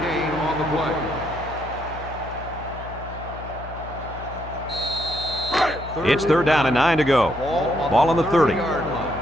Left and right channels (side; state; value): left; noise; hum, 12 dB below the sound